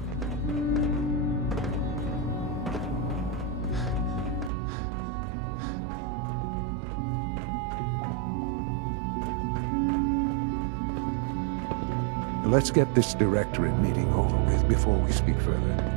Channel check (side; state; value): left; drops out; at 4.5 s